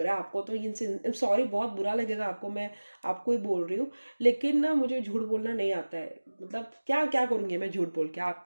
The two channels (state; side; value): inverted; both; correlation -1.00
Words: रहा है। आपको तो इनसे सॉरी, बहुत बुरा लगेगा आपको, मैं आपको ही बोल रही हूँ, लेकिन ना मुझे झूठ बोलना नहीं आता है। मतलब क्या क्या करूँगी मैं झूठ बोल के,